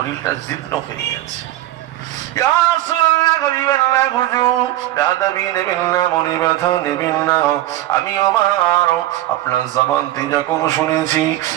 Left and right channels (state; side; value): quieter; left; 14.8 dB